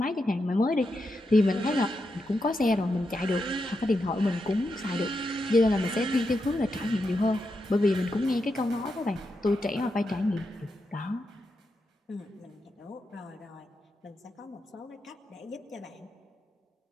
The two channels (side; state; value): both; normal; correlation 0.85